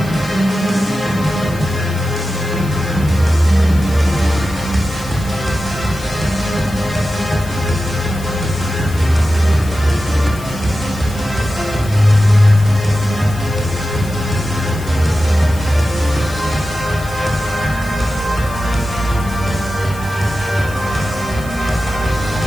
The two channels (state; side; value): noise; left; hiss, 18 dB below the sound